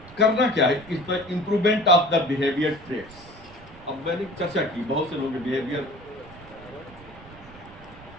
करना क्या है? इस पर improvement of the behaviour traits. अब मैंने चर्चा की बहुत से लोग बिहेवियर,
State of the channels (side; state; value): right; noise; rumble, 21 dB below the sound